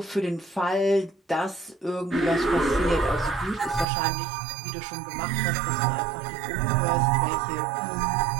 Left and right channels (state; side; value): drops out; left; at 3.9 s